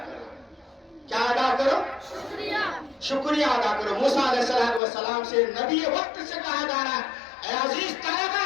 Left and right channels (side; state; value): right; drops out; at 4.8 s